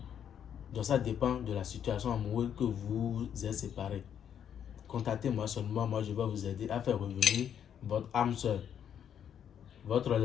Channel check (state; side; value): quieter; right; 8.9 dB